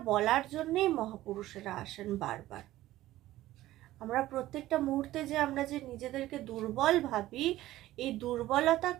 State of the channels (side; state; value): left; quieter; 15.4 dB